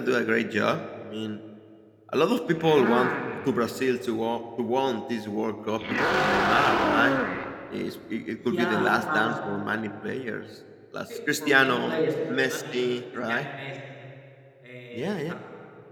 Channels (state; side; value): identical; both; correlation 1.00